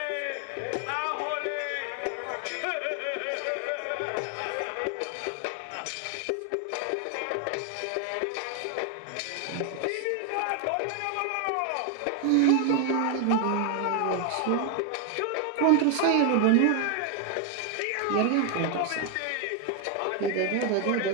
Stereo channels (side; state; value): both; different; correlation 0.01